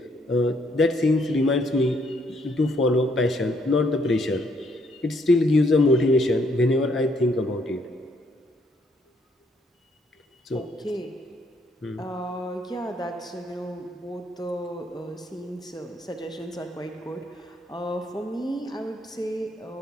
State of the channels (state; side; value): normal; both; correlation 0.70